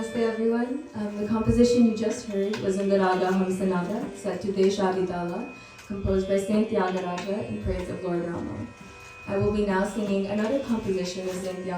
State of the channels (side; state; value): both; identical; correlation 1.00